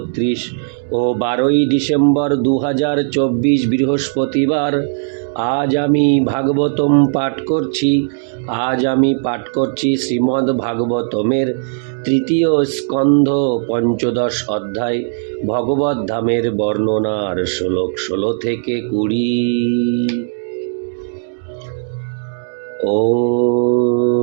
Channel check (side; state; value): left; silent; digital silence